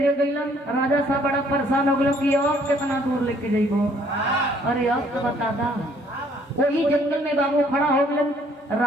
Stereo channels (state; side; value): normal; both; correlation 0.62